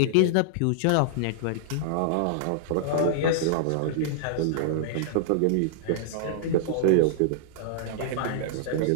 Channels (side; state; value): both; different; correlation -0.01